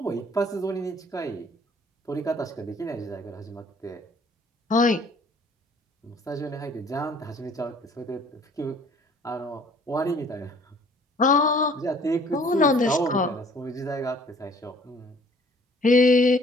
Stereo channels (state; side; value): normal; both; correlation 0.56